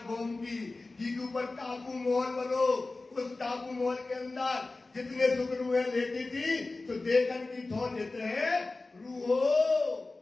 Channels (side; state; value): right; quieter; 3.3 dB